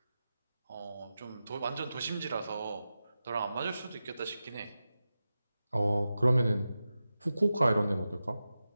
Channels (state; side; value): inverted; both; correlation -0.93